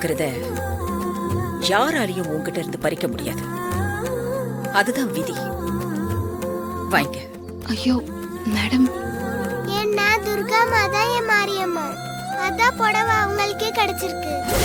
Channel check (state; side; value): identical; both; correlation 1.00